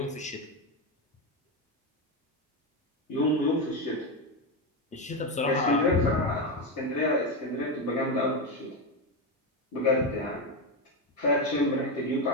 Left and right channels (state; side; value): normal; both; correlation 0.11